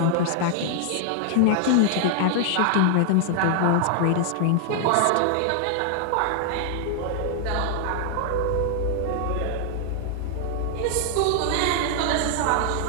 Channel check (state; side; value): different; both; correlation 0.00